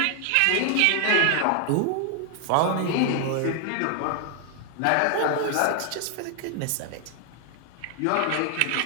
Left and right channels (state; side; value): different; both; correlation 0.00